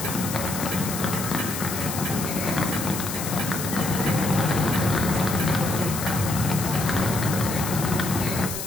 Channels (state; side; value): noise; left; hiss, 6 dB below the sound